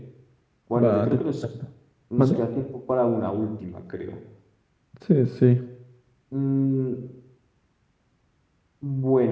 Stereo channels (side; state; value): both; identical; correlation 1.00